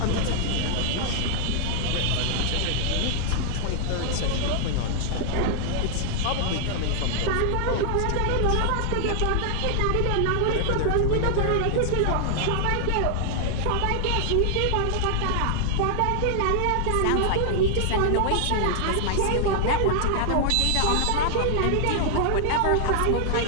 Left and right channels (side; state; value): both; different; correlation -0.01